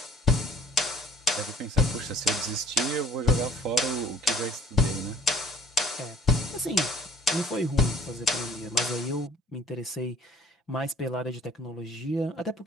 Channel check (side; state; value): both; normal; correlation 0.53